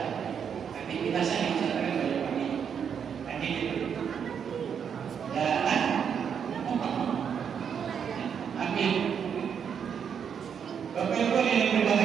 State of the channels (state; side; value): quieter; left; 7.5 dB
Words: Aktivitas saya misalkan banyak pagi. Tadi gitu. Dan amin. Bapak Ibu yang